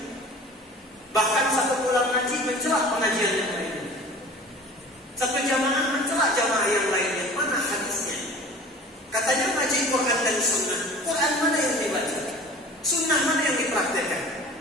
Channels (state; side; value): normal; both; correlation 0.42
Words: Bahkan satu pulang ngaji mencelah pengajian yang lainnya. Satu jamaah mencelah jamaah yang lainnya. Mana hadisnya? Katanya ngaji Quran dan Sunnah. Quran mana yang dibaca? Sunnah mana yang dipraktekkan?